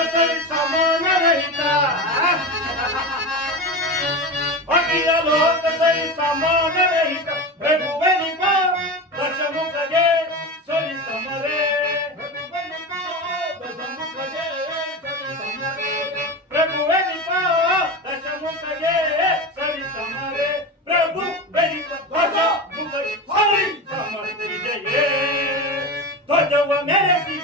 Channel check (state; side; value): normal; both; correlation 0.24